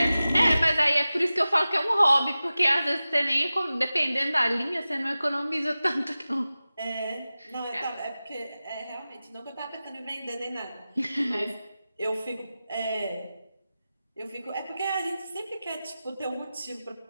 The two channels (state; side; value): inverted; both; correlation -0.95